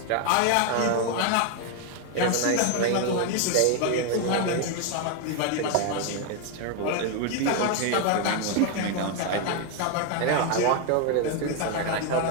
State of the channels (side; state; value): both; different; correlation 0.01